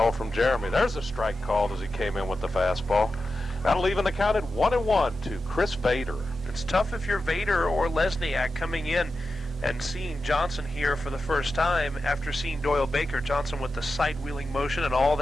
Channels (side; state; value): both; normal; correlation 0.91